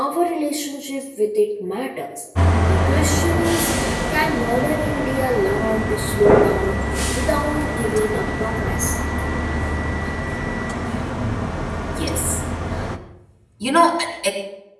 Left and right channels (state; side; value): identical; both; correlation 1.00